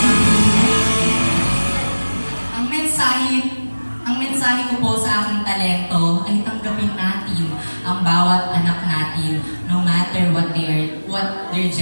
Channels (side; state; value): both; inverted; correlation -1.00